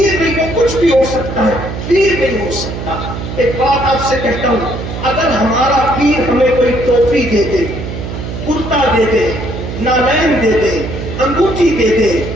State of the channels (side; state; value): right; noise; hum, 7 dB below the sound